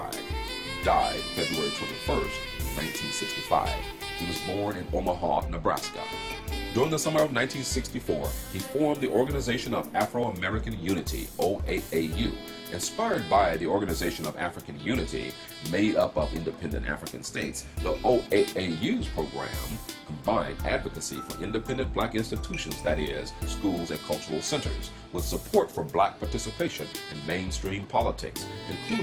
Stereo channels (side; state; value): both; identical; correlation 1.00